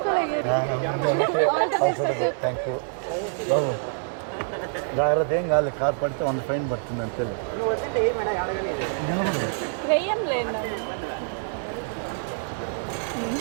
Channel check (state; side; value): silent; left; digital silence